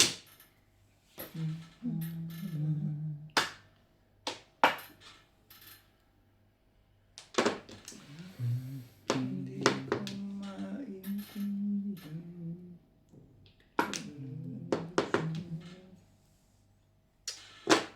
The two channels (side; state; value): both; identical; correlation 1.00